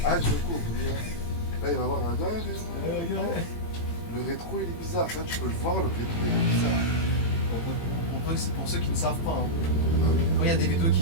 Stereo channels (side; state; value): right; late; 18 ms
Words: Ah, je me couvre. Là, il va voir un gars. Le rétro, il est bizarre. Ça, tu peux le voir, le rétro, il est bizarre. C'est pour ceux qui ne savent pas. Hein. Ah oui. Quand il y a des vidéos